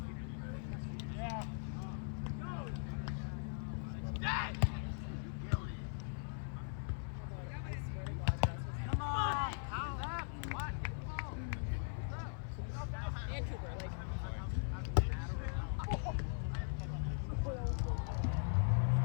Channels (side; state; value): right; silent; 51 dB below the other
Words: Yeah. Come on. What? And Cooper, like.